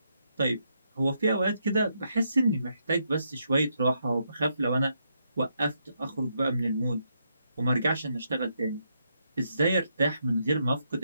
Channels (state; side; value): inverted; both; correlation -0.79